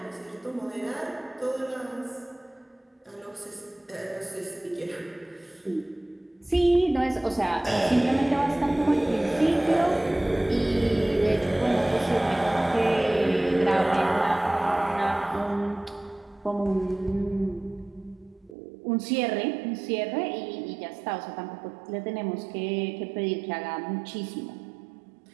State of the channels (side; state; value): left; drops out; at 18.6 s